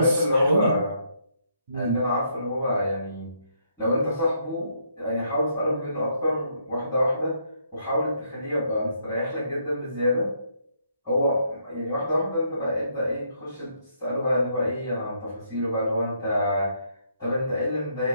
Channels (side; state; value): both; inverted; correlation -0.73